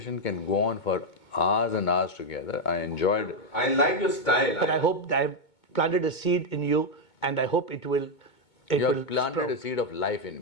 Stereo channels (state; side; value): late; right; 2.2 ms